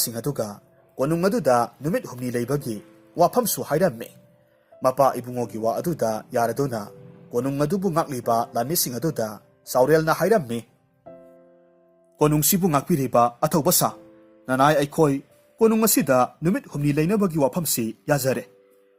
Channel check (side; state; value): both; identical; correlation 1.00